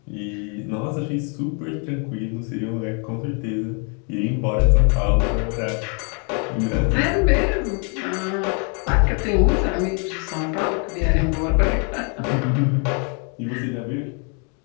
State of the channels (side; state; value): right; quieter; 38.1 dB